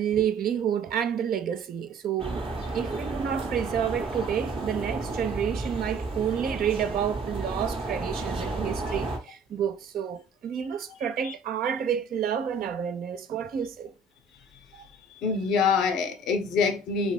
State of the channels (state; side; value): quieter; left; 3.2 dB